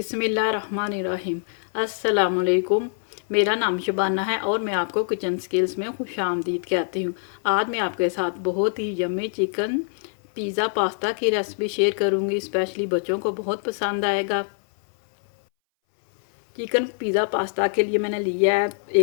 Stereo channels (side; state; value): right; silent; 61 dB below the other